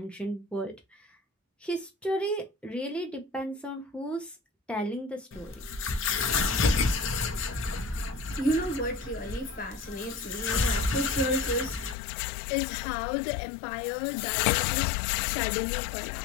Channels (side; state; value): right; drops out; at 12.0 s